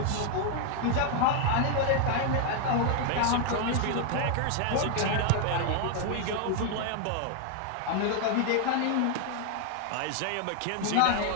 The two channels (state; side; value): different; both; correlation 0.00